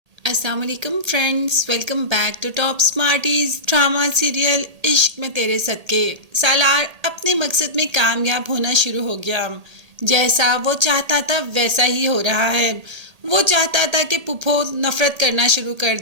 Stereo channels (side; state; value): left; late; 1.8 ms